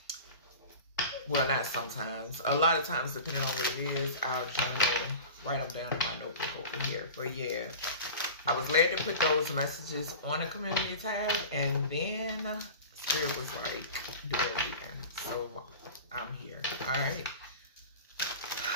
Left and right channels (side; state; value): both; inverted; correlation -0.35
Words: well, not sometimes, a lot of times, depending on what it is, I'll journal, write them down in my notebook over here. But yeah, I was led to put those messages on the community tab, and then Spirit was like, do a reading. So I'm here. Alright.